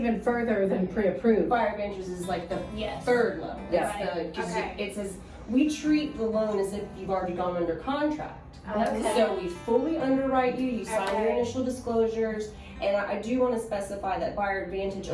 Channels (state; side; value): identical; both; correlation 1.00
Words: further than pre-approved. Buyer advantage is like the Yes. third level. Yeah. It's the, 'cause Okay. it says, we treat the loan as if you've already gone under contract. Okay. So we fully underwrite you, you sign your Okay. initial disclosures, and I do want to specify that buyer advantage